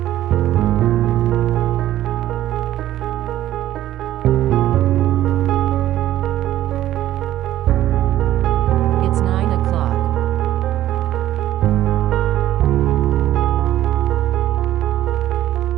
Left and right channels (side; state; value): left; quieter; 13.4 dB